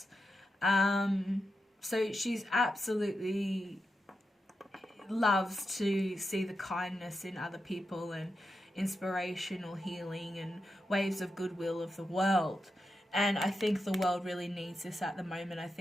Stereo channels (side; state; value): both; normal; correlation 0.88